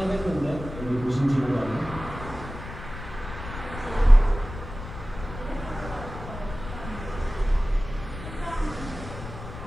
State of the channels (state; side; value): noise; left; rumble, 11 dB below the sound